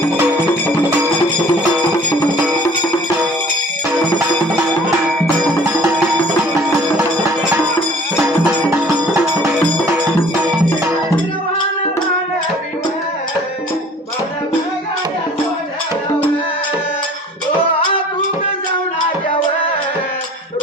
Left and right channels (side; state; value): both; normal; correlation 0.50